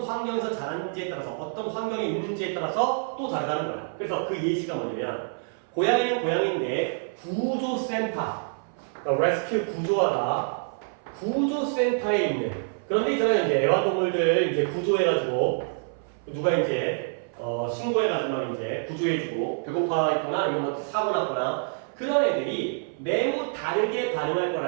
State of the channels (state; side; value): silent; left; 57 dB below the other